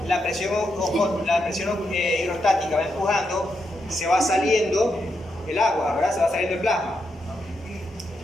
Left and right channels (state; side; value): normal; both; correlation 0.83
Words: la presión hidrostática va empujando, se va saliendo el agua, ¿verdad? Se va saliendo el plasma.